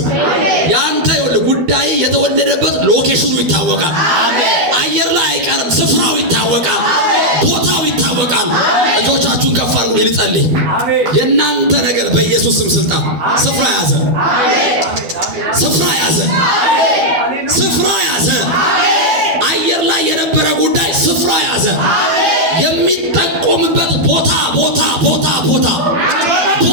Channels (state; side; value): late; left; 12 ms